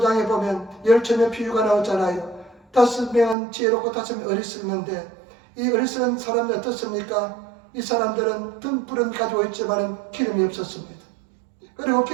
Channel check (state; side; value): drops out; left; at 3.4 s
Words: 보면 10처녀 비유가 나오잖아요. 5명은 지혜롭고 5명은 어리석는데 이 어리석은 사람은 어떻습니까? 이 사람들은 등불은 가지고 있지만 기름이 없었습니다. 그리고